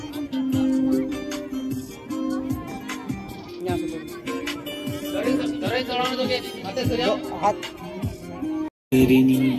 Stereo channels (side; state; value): both; identical; correlation 1.00